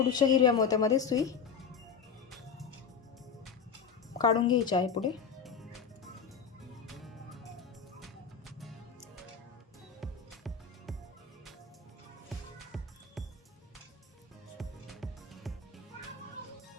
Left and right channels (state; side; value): quieter; right; 6.2 dB